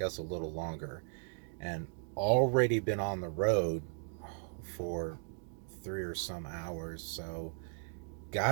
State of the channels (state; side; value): silent; left; 54 dB below the other